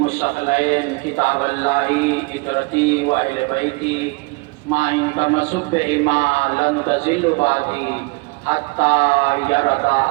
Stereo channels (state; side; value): quieter; left; 28.0 dB